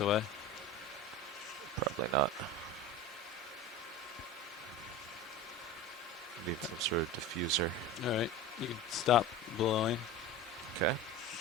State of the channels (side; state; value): both; normal; correlation 0.30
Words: away? Probably not. Need some sort of diffuser. Alright, you can stop blowing. Okay.